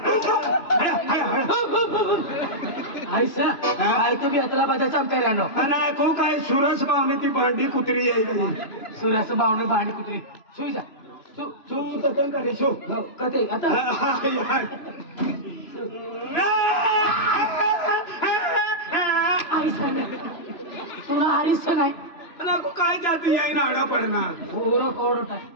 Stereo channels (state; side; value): late; right; 3.0 ms